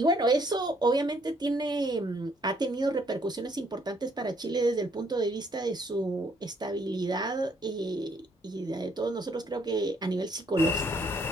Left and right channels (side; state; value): both; normal; correlation 0.67